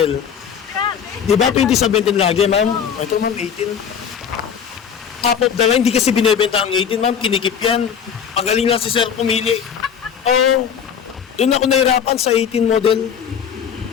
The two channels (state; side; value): quieter; right; 7.7 dB